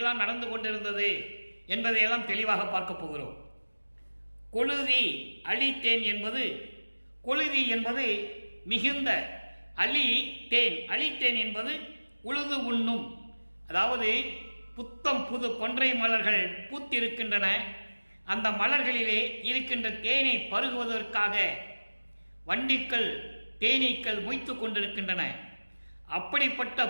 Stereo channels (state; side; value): inverted; both; correlation -1.00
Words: நடந்து கொண்டிருந்தது என்பதையெல்லாம் தெளிவாக பார்க்க போகிறோம். கொழுதி அழித்தேன் என்பது, கொழுதி என்பது மிகுந்த, அழித்தேன் என்பது உழுது உண்ணும். அதாவது புத்தம் புது கொன்றை மலர்கள் பூத்திருக்கின்றன. அந்த மலர்களிலே இருக்கின்ற தேனை பருகுவதற்காக வண்டிக்கள் தேனீக்கள் மொய்த்து கொண்டிருக்கின்றன. அப்படிப்பட்ட